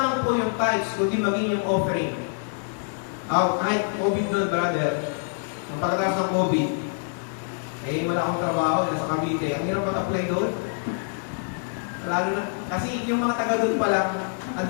po yung tithes, kundi maging yung offering. Kahit COVID doon, brother, ang pagkatapos ng COVID, wala akong trabaho, nasa Cavite. Ang hirap mag-apply doon. Lalo na, kasi yung mga taga doon pa lang, ang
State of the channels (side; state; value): right; silent; digital silence